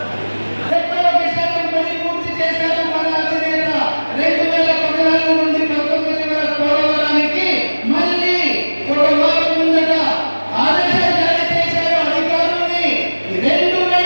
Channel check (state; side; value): inverted; both; correlation -1.00